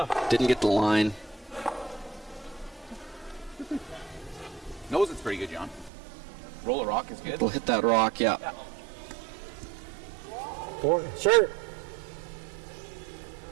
didn't get the line. Knows it's pretty good, John. Roll a rock is good. We'll hit that rock, yeah. Sure.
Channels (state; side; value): drops out; left; at 5.9 s